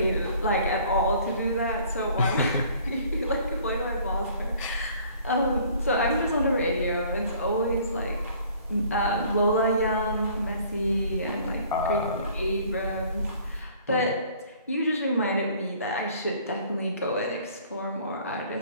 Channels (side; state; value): both; inverted; correlation -0.55